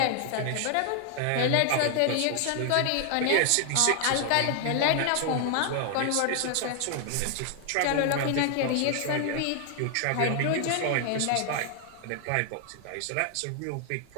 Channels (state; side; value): different; both; correlation 0.00